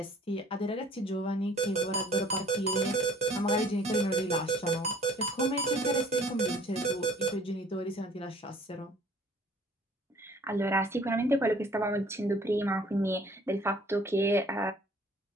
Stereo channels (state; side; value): normal; both; correlation 0.54